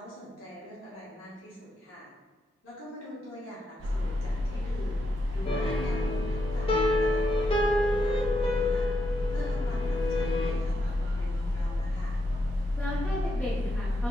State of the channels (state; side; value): normal; both; correlation 0.82